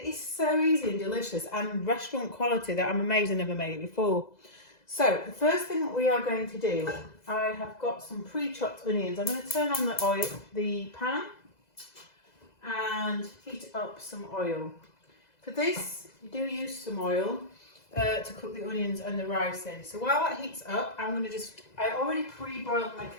is so easy and delicious and restaurant quality that I'm amazed I never made it before. So the first thing that we are going to do, I have got some pre-chopped onions. I'm going to turn on the pan and heat up some oil. For this, you do use some oil to cook the onions and the rice in. So while that heats up, I already pre-boiled my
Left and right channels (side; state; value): right; late; 2.0 ms